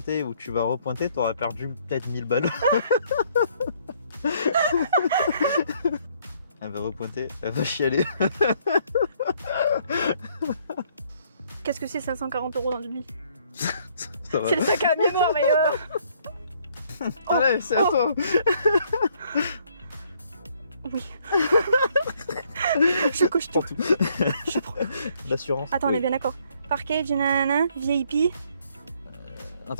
et où tu vas repointer, t'auras perdu peut-être 1000 balles. Elle va repointer, elle va chialer. Qu'est-ce que c'est 540 € dans une vie? Ça va. C'est le sac à mémoire, mais Allez, c'est à toi. Oui. Je coche tout. Je prends. L'assurance. Attends, on est bien d'accord. Package, nanana, VIP. En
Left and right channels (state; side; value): inverted; both; correlation -0.66